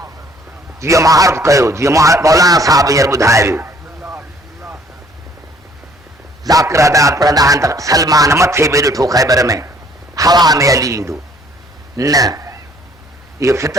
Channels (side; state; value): both; normal; correlation 0.60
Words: जीअं मां अर्ज़ कयो, जीअं मौलाना साहब हींअर ॿुधाए वियो, ज़ाकिर अदात पढ़ंदा आहिनि त सलमान मथे बि ॾिठो ख़ैबर में, हवा में अली ईंदो न, इहो